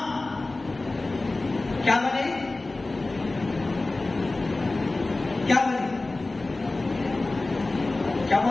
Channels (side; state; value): right; quieter; 3.1 dB